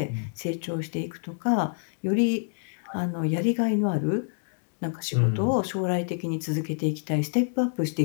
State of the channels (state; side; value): silent; right; digital silence